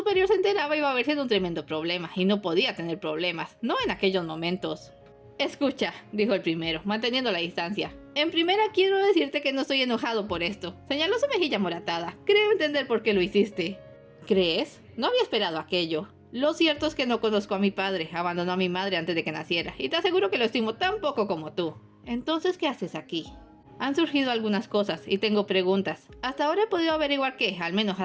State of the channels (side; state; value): both; identical; correlation 1.00